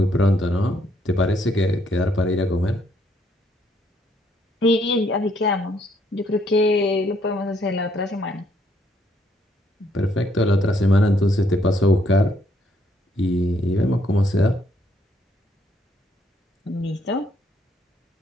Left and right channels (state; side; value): normal; both; correlation 0.70